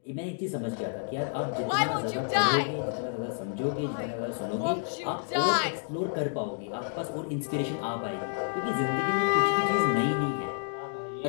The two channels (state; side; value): silent; right; digital silence